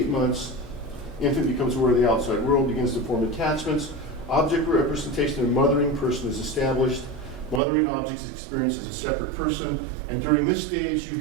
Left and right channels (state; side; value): drops out; left; at 7.6 s